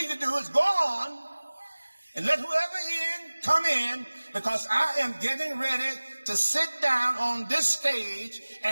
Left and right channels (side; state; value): both; inverted; correlation -1.00